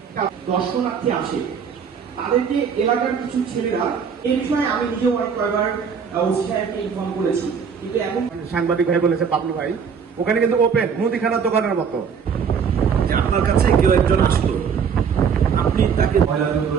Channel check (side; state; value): left; quieter; 6.6 dB